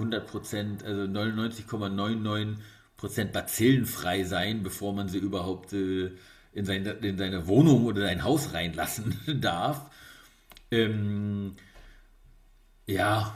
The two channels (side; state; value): both; identical; correlation 1.00